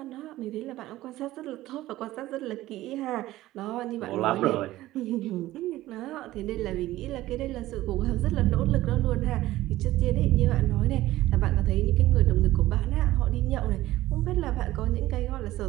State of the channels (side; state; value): left; quieter; 16.1 dB